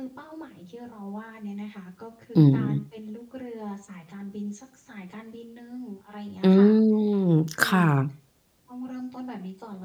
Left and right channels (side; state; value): both; identical; correlation 1.00